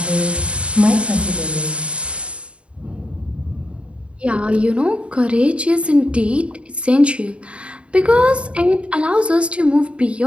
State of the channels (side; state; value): left; late; 0.059 ms